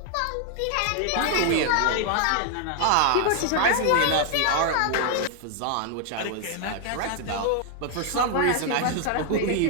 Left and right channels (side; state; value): both; different; correlation 0.00